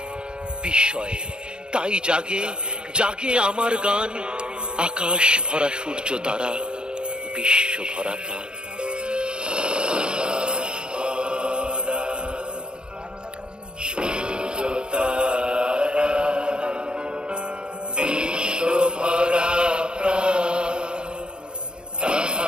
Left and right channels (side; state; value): left; late; 0.049 ms